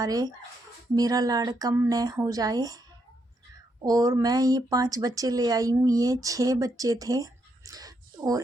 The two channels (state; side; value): normal; both; correlation 0.79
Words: मेरा लाड़ कम न हो जाए। और मैं ये 5 बच्चे ले आई हूँ, ये 6 बच्चे थे।